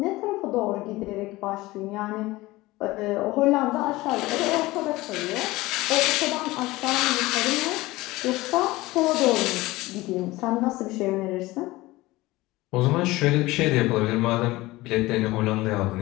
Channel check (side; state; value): right; quieter; 19.5 dB